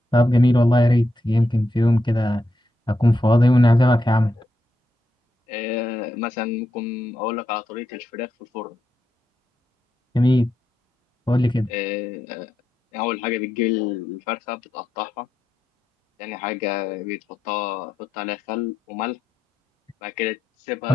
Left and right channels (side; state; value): both; normal; correlation 0.84